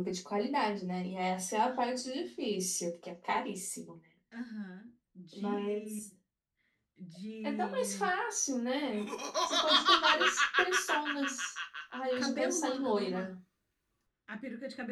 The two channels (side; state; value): both; identical; correlation 1.00